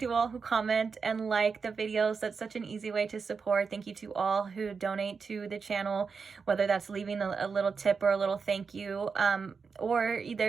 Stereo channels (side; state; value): left; quieter; 5.3 dB